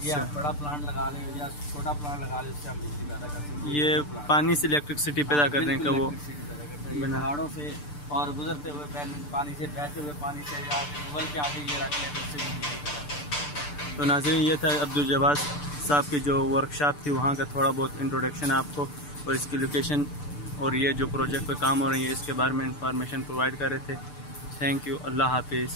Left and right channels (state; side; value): late; right; 6.8 ms